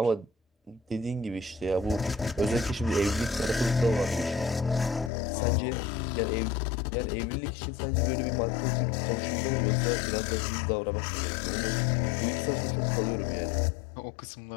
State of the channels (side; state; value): right; drops out; at 5.1 s